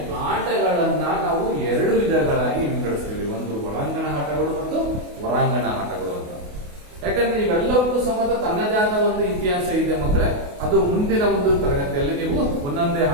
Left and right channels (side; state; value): left; late; 28 ms